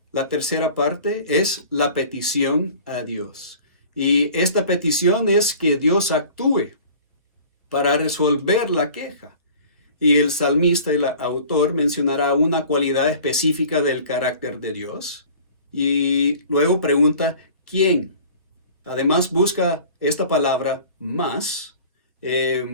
La tercera parte es la petición a Dios. Y esta petición es que Dios actúe para resolver la queja. Y el salmista, el autor, mencionará una cualidad específica del carácter de Dios. Y luego pregunta, ¿quién? Además busca esta palabra más.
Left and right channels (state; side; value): inverted; both; correlation -0.45